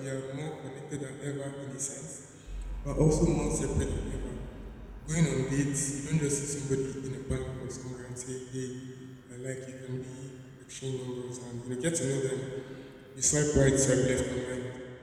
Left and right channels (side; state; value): both; identical; correlation 1.00